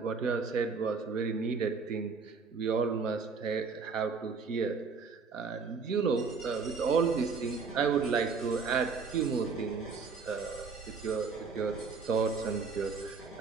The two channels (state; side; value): quieter; left; 5.0 dB